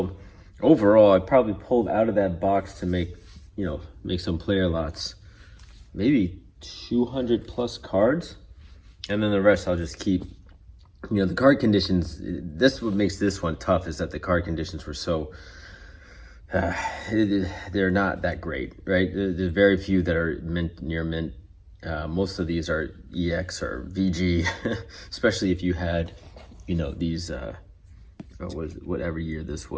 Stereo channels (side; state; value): both; identical; correlation 1.00